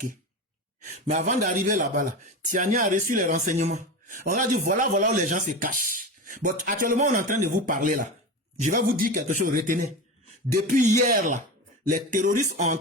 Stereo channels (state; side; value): normal; both; correlation 0.24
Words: Mais avant d'arriver là-bas, là, Tiani a reçu les renseignements. On a dit, voilà où les gens se cachent. Bon, actuellement, on est en train de vous parler là. Je vais vous dire quelque chose, retenez. Depuis hier là, les terroristes ont